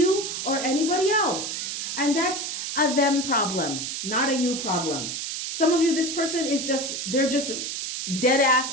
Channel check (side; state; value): right; noise; hiss, 4 dB below the sound